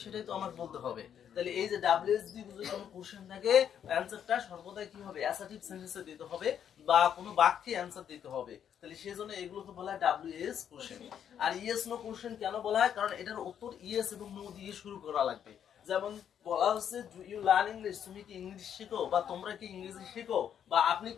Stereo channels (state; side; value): quieter; right; 8.9 dB